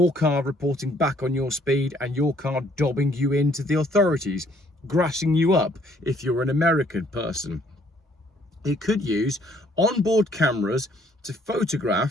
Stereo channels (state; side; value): normal; both; correlation 0.64